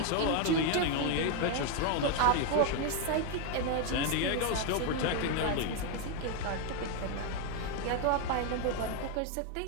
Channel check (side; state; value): both; different; correlation 0.01